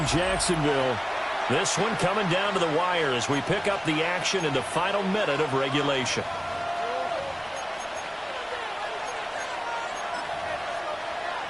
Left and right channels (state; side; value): identical; both; correlation 1.00